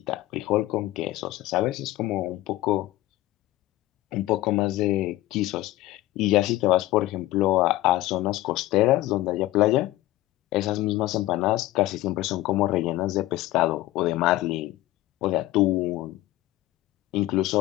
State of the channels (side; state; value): right; quieter; 16.7 dB